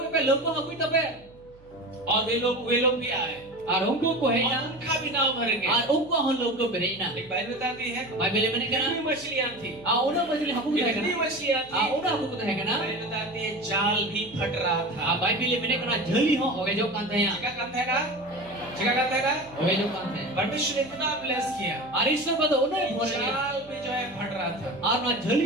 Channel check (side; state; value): right; noise; hum, 26 dB below the sound